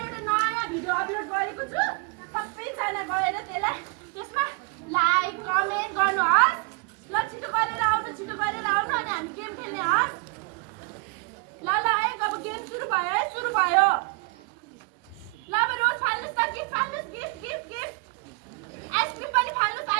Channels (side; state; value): left; quieter; 30.4 dB